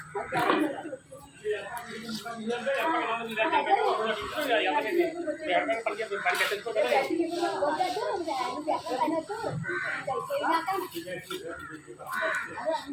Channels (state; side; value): identical; both; correlation 1.00